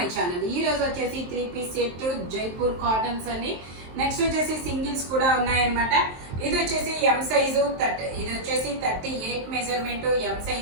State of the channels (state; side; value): late; left; 23 ms